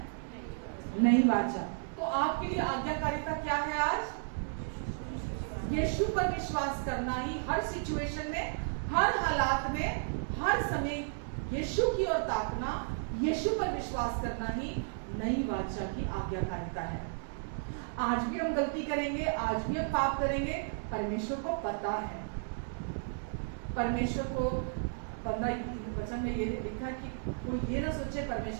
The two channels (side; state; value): left; silent; digital silence